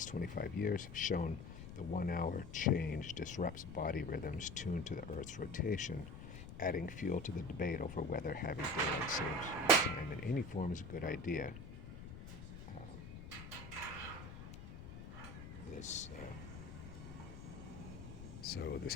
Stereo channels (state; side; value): noise; left; rumble, 11 dB below the sound